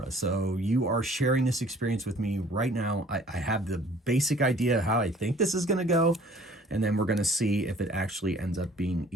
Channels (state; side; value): normal; both; correlation 0.54